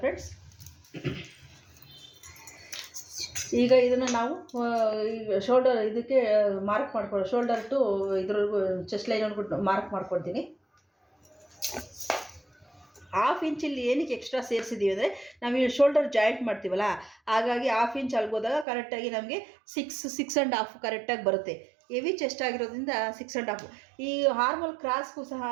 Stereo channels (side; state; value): left; drops out; at 18.7 s